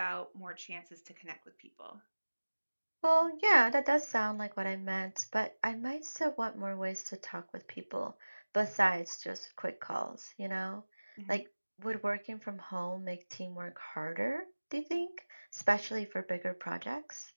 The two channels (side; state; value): both; inverted; correlation -1.00